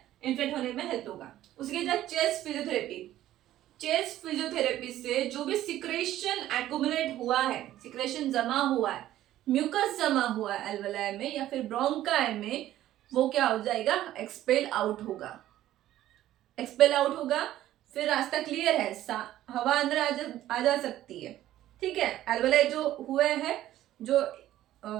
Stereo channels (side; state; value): left; quieter; 13.5 dB